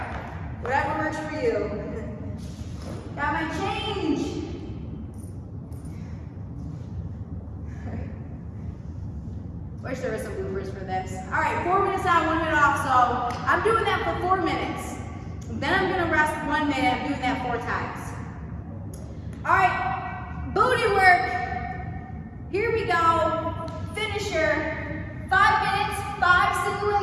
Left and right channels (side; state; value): both; identical; correlation 1.00